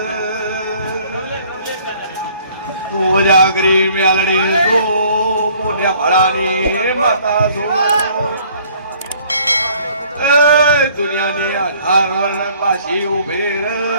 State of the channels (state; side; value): inverted; both; correlation -0.57